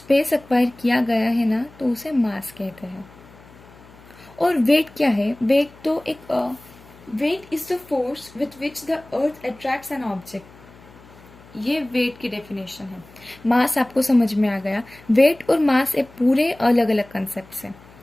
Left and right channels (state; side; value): noise; left; hum, 23 dB below the sound